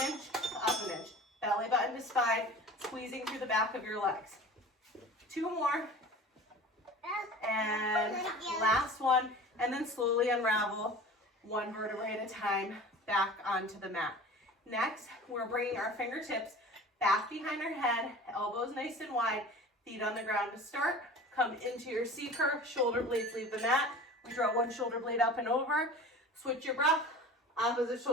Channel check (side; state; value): both; normal; correlation 0.39